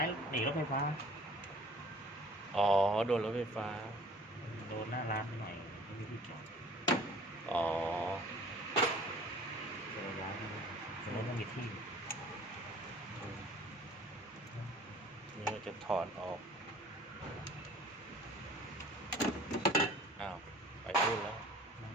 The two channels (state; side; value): normal; both; correlation 0.49